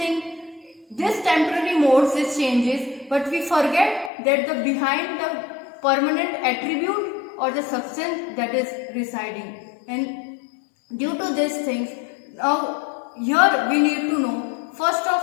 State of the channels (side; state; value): right; drops out; at 4.1 s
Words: This temporary modes, these changes, but we forget that the behind the permanent attribute or the substance that is residing. And due to these things, now here we need to know, first